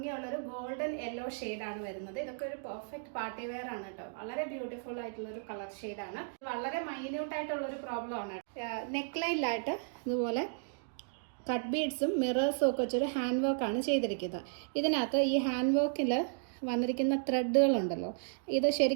ഗോൾഡൻ യെല്ലോ ഷെയ്ഡാണ് വരുന്നത്. ഇതൊക്കെ ഒരു പെർഫെക്റ്റ് പാർട്ടി വെയർ ആണ് കേട്ടോ. വളരെ ബ്യൂട്ടിഫുൾ ആയിട്ടുള്ള ഒരു കളർ ഷെയ്ഡാണ്. വളരെ മൈന്യൂട്ട് ആയിട്ടുള്ള ഒരു പ്രോബ്ലം ആണ്. നെക്ക് ലൈനിലായിട്ട് ഇതുപോലെ കട്ട് ബീഡ്സും മിറേഴ്സും ഒക്കെ വെച്ചൊരു ഹാൻഡ് വർക്കാണ് ചെയ്തിരിക്കുന്നത്. ഇതിനകത്ത് ഈ ഹാൻഡ് വർക്കിൽ വന്നിരിക്കുന്ന ത്രെഡുകളുണ്ടല്ലോ, ഇത്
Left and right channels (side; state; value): left; silent; digital silence